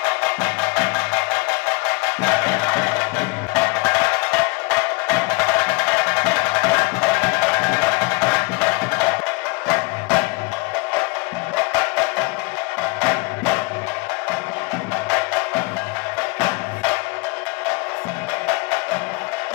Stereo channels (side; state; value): right; quieter; 26.8 dB